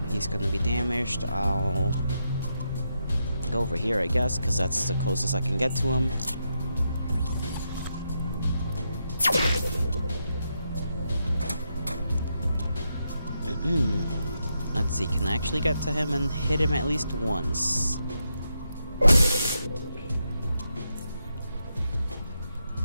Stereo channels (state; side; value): inverted; both; correlation -0.83